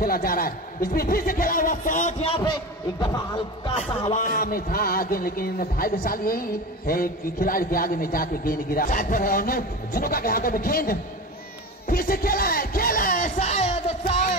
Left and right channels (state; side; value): normal; both; correlation 0.28